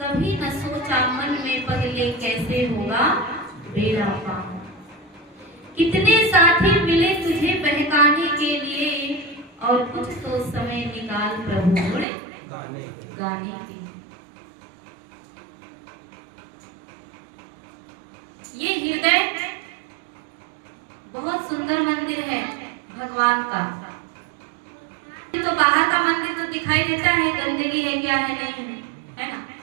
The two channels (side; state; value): left; drops out; at 12.1 s